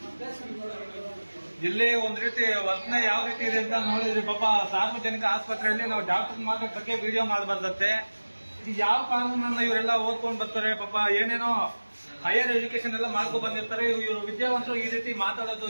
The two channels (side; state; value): both; inverted; correlation -1.00